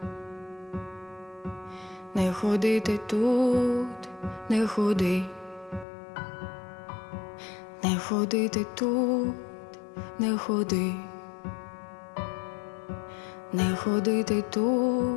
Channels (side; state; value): right; drops out; at 5.9 s